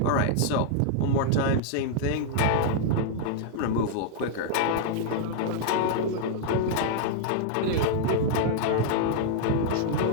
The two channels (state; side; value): different; both; correlation -0.01